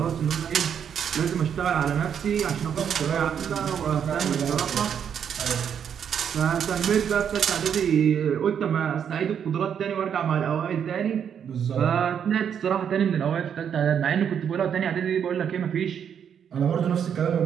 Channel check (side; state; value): left; quieter; 8.1 dB